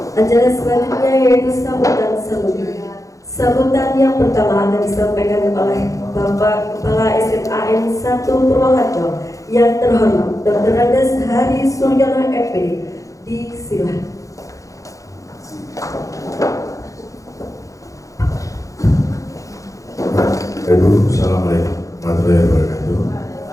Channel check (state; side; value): late; right; 0.16 ms